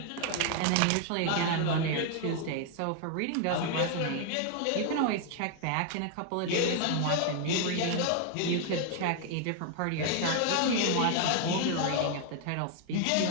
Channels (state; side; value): different; both; correlation 0.00